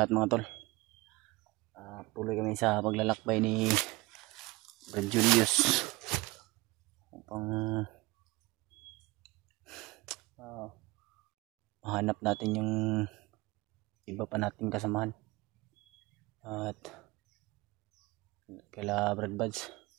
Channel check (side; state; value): left; quieter; 22.1 dB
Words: mga tol. Tuloy kami sa paglalakbay ni Brad Julius upang mahanap natin yung iba pa nating kasamahan at kala Brad Buds.